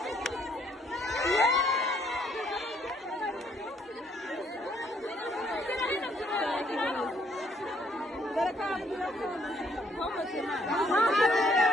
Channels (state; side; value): normal; both; correlation 0.67